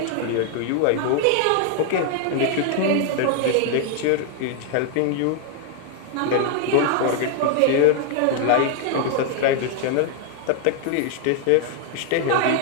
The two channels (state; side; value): different; both; correlation 0.00